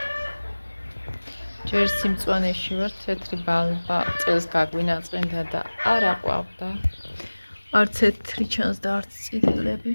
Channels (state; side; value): inverted; both; correlation -1.00